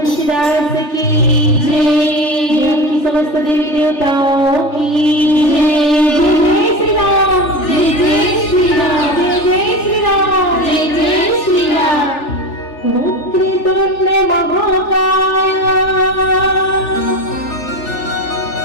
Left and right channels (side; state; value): right; late; 3.4 ms